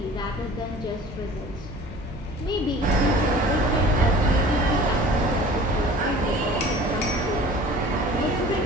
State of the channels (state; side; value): normal; both; correlation 0.45